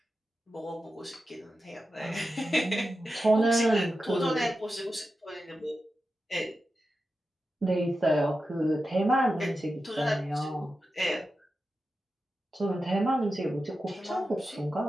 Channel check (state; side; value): normal; both; correlation 0.91